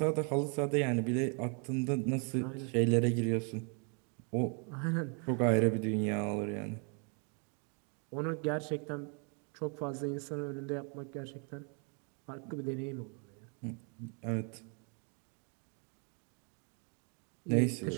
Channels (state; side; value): quieter; left; 38.6 dB